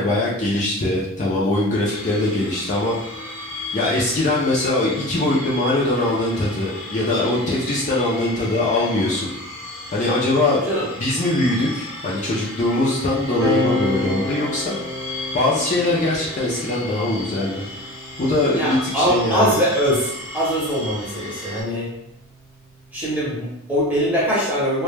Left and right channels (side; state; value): both; normal; correlation 0.35